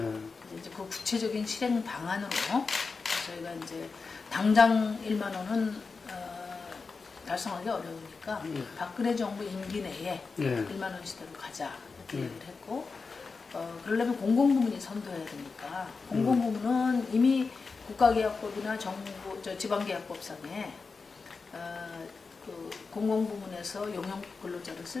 이제 그 구체적인 실행 방안으로 저희가 이제 당장 1만 원은 달성하기 어려우니까 박근혜 정부 임기 내에 네. 1만 원 시대로 가자 이렇게 얘기를 했고, 그러려면 공공부문이 선도해야 되니까 공공부문은 이미 국가계약법이나 정부 지방계약법상에 그 공공부문에서 용역 근로자를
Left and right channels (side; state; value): right; quieter; 4.5 dB